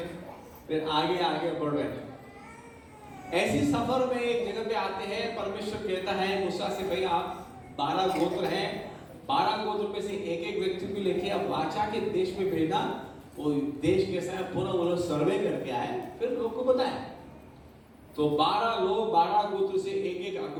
फिर आगे आगे बढ़ रहे। ऐसी सफर में एक जगह पे आते हैं, परमेश्वर कहता है मूसा से, भाई आप 12 गोत्र हैं, 12 गोत्र में से एक एक व्यक्ति को लेके आप वाचा के देश में भेजना। वो देश कैसा है पूरा वो लोग सर्वे करके आए, फिर लोग को बताए। तो 12 लोग 12 गोत्र से एक एक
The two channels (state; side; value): identical; both; correlation 1.00